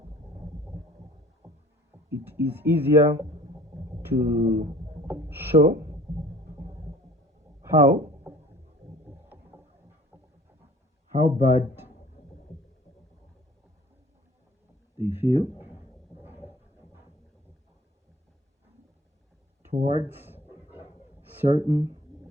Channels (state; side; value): normal; both; correlation 0.50